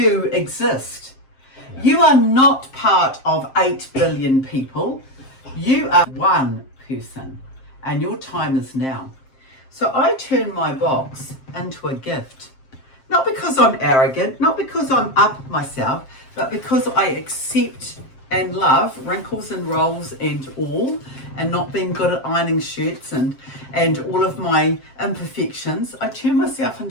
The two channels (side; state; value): right; late; 7.6 ms